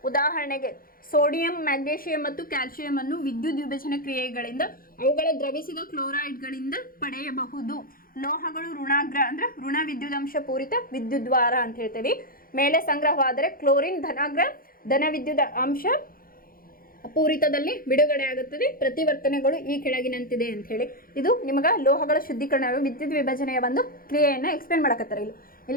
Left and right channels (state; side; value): late; right; 0.42 ms